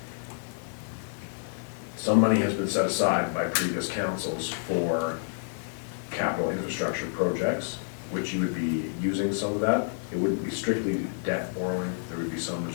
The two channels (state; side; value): silent; right; digital silence